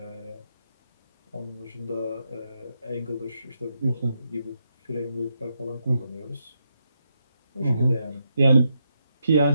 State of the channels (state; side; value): inverted; both; correlation -0.82